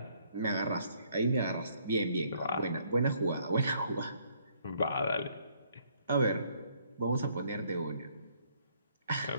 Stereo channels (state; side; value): inverted; both; correlation -0.66